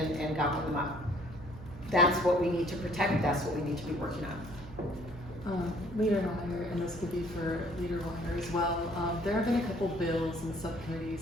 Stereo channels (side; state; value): right; noise; hum, 15 dB below the sound